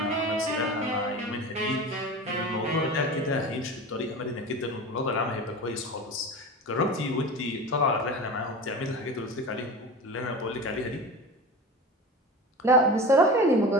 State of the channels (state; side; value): normal; both; correlation 0.31